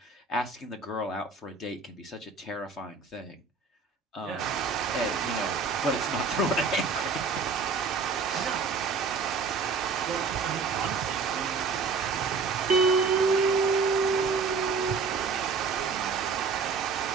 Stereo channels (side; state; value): left; quieter; 4.8 dB